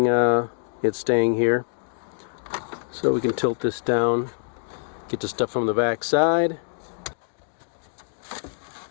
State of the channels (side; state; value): right; silent; digital silence